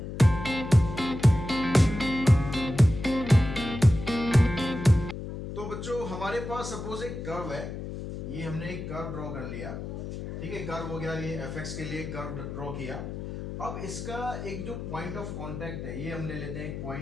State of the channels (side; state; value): left; noise; hum, 7 dB below the sound